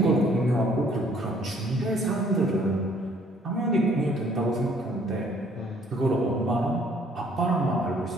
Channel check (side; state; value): both; normal; correlation 0.61